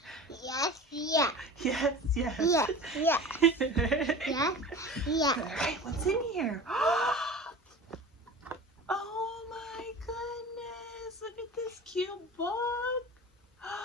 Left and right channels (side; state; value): both; normal; correlation 0.35